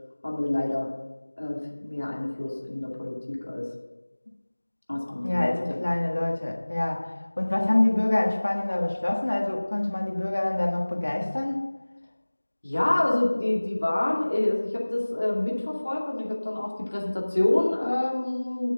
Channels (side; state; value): both; inverted; correlation -1.00